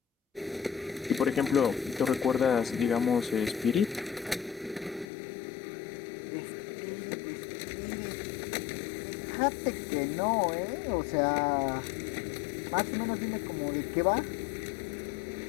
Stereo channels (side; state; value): right; drops out; at 5.1 s